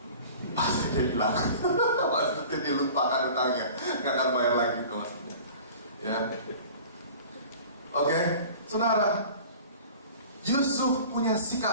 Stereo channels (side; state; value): both; inverted; correlation -0.43